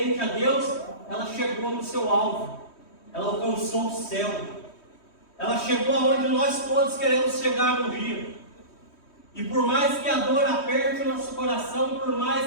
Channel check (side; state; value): right; late; 3.1 ms